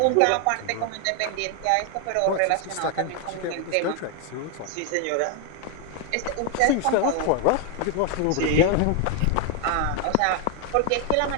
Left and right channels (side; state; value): both; different; correlation 0.01